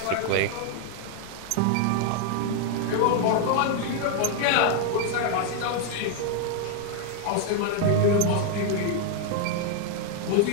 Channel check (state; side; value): different; both; correlation 0.00